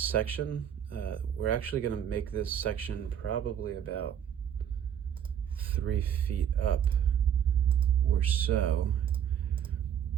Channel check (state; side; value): quieter; left; 9.1 dB